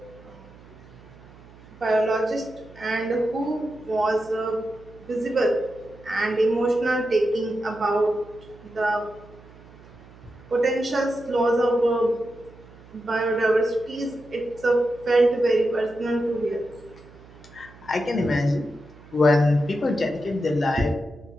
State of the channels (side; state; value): right; noise; hum, 22 dB below the sound